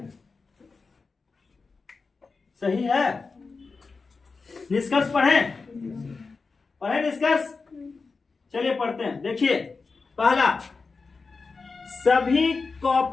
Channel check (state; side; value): quieter; right; 4.4 dB